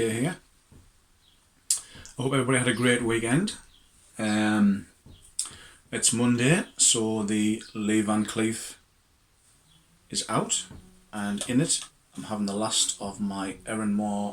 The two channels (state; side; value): identical; both; correlation 1.00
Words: here. I hope everybody had a great weekend. It's Monday, so the Lee Van Cleef is out, and in it I'm having the last of my